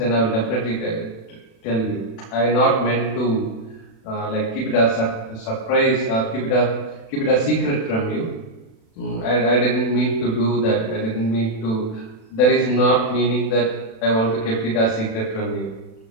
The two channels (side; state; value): right; late; 36 ms